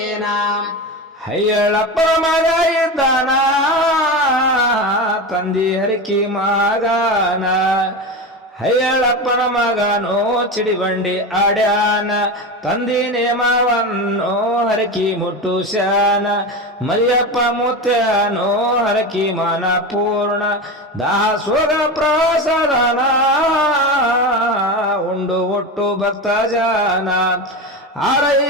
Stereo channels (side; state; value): both; normal; correlation 0.22